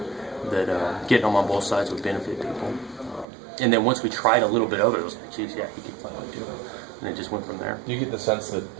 that getting him on both sides would benefit people. And then once we tried a little bit of it, it was like, geez, yeah, he could finally do it. And it just went from there. Do you get the sense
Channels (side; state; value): left; drops out; at 3.2 s